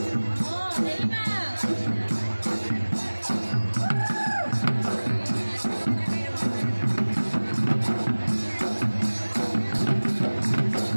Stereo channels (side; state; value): both; inverted; correlation -1.00